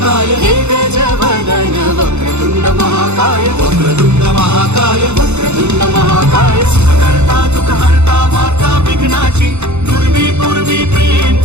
हे गजवदन वक्रतुंड महाकाय वक्रतुंड महाकाय वक्रतुंड महाकाय करता दुःख हरता माता विघ्नाची पूर्वी प्रेम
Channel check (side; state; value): left; late; 0.82 ms